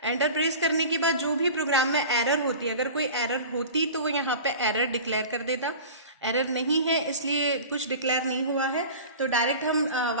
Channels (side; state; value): both; inverted; correlation -0.36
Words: एंटर प्रेस करने के बाद जो भी प्रोग्राम में एरर होती है, अगर कोई एरर होती तो वो यहाँ पे एरर डिक्लेयर कर देता। एरर नहीं है इसलिए कुछ डिक्लेयर नहीं हुआ है, तो डायरेक्ट हम